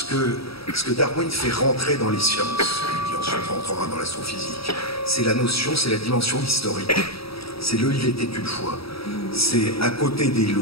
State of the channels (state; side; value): late; right; 0.76 ms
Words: que Darwin fait rentrer dans les sciences, qui ensuite rentrera dans l'astrophysique. C'est la notion, c'est la dimension historique. C'est le « il était une fois ». C'est à côté des